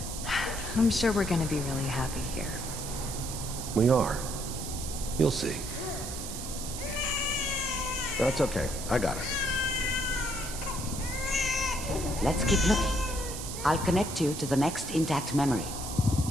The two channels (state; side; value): noise; right; hiss, 8 dB below the sound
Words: I'm sure we're gonna be really happy here. We are. You'll see. That's okay. I got it. Let's keep looking. I'll connect you to the next intact memory.